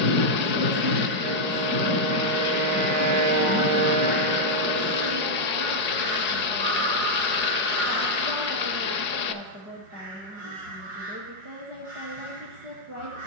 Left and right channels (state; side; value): late; left; 4.8 ms